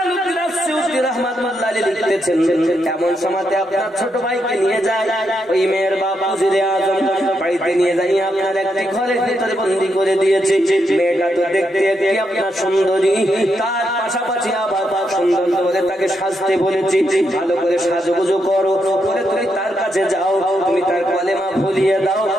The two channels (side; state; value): both; normal; correlation 0.81